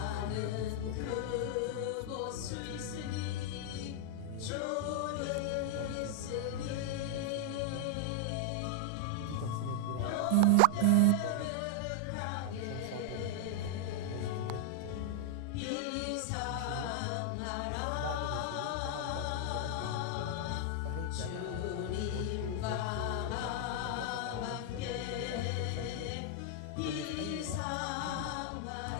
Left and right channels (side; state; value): both; different; correlation 0.00